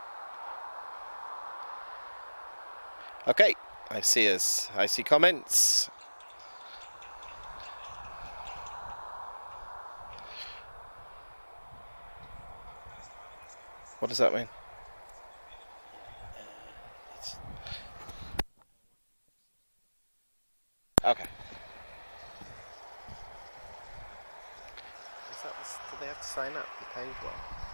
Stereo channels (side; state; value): both; inverted; correlation -1.00